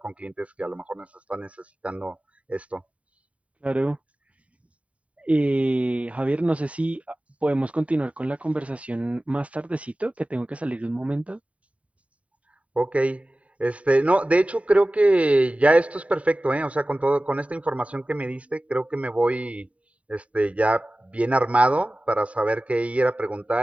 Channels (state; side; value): late; left; 0.066 ms